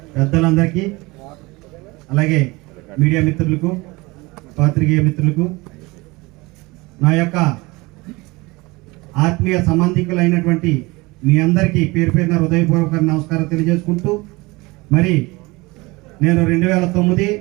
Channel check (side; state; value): left; quieter; 23.3 dB